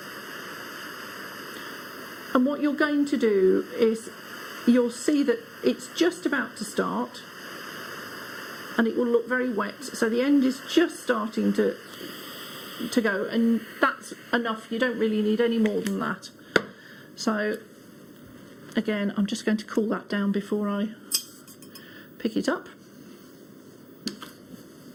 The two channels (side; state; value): both; identical; correlation 1.00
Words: And what you're going to do is you'll see that it's just about to start, and it will look very wet. So the end is just starting to go, and that's enough. You don't really need any more than that. So again, I'm just going to cool that down before I pick it up.